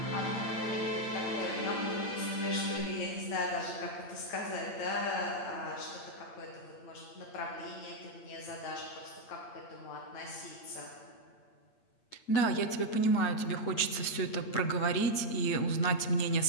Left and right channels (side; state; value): right; late; 8.8 ms